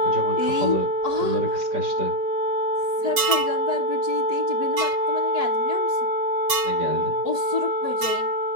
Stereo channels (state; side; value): late; left; 5.3 ms